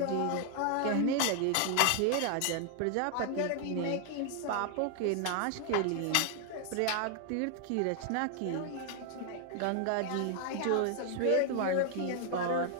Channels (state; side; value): different; both; correlation 0.00